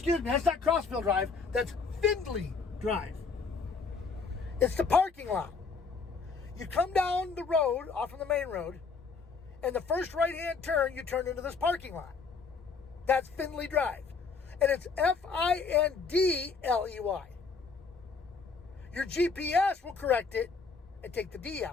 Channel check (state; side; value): quieter; right; 4.8 dB